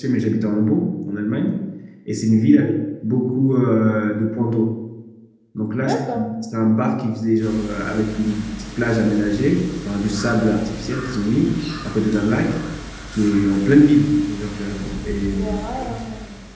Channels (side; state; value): both; identical; correlation 1.00